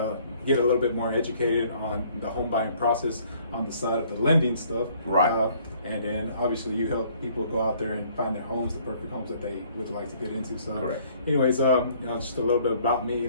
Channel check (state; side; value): inverted; both; correlation -0.60